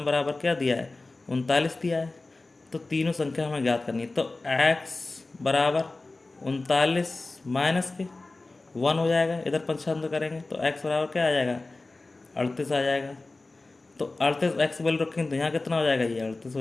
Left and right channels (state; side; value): quieter; right; 3.3 dB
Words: बराबर क्या दिया है? 39 दिया है। तो तीनों संख्या हमें ज्ञात करनी है। तो x बराबर 39 माइनस के 1 हो जाएगा। इधर पंचांतर करेंगे तो x बराबर क्या आ जाएगा? 38 आ जाएगा। तो 38 x वैल्यू रखेंगे तो यहाँ कितना हो जाएगा? ये 38